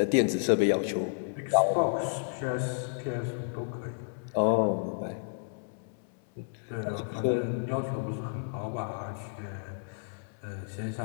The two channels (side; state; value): right; silent; 57 dB below the other